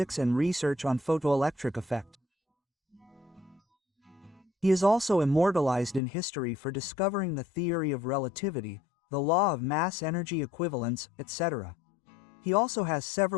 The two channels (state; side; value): drops out; right; at 6.0 s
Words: and research on photoelectric effect. He is also immortalized in history for discovering the theory of relativity, the law of mass-energy equivalence, etc. He also has